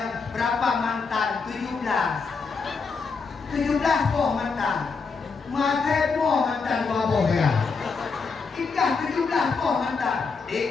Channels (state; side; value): quieter; right; 4.8 dB